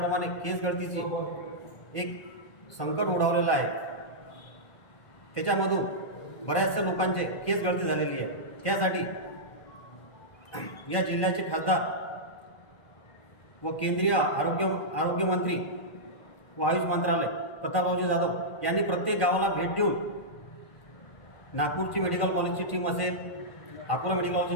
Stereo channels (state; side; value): late; right; 1.4 ms